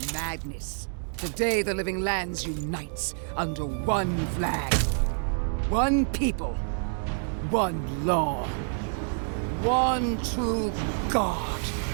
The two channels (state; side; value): silent; left; 60 dB below the other